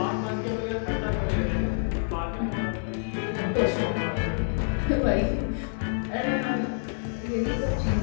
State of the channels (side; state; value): right; silent; 60 dB below the other